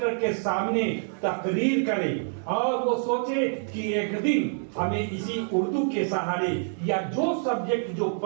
के सामने तकरीर करें और वो सोचे कि एक दिन हमें इसी उर्दू के सहारे या जो सब्जेक्ट जो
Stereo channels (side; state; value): left; silent; digital silence